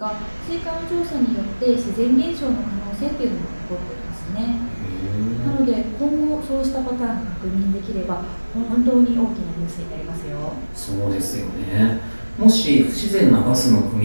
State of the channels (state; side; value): inverted; both; correlation -1.00